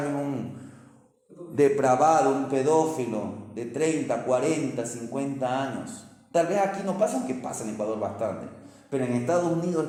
Un depravado, un pedófilo de 30, 40, 50 años. Tal vez aquí no pasa, aunque pasa en Ecuador bastante, pero en Estados Unidos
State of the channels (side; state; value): both; identical; correlation 1.00